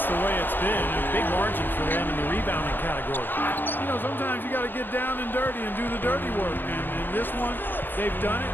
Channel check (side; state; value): right; late; 0.094 ms